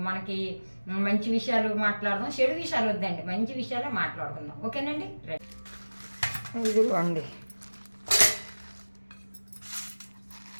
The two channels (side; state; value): both; inverted; correlation -1.00